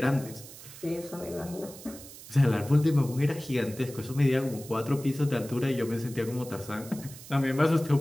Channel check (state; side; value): noise; right; hiss, 16 dB below the sound